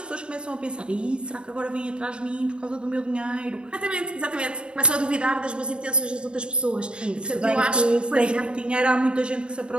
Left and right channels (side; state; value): left; late; 0.053 ms